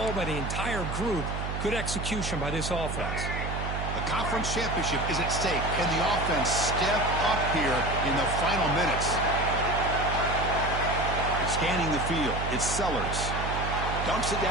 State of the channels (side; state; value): right; noise; hum, 4 dB below the sound